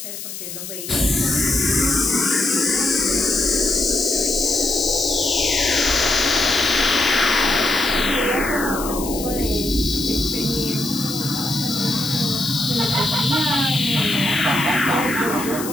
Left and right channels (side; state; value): left; noise; hiss, 9 dB below the sound